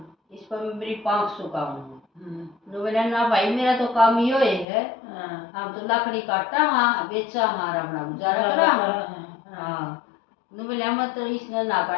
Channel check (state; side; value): drops out; right; at 4.7 s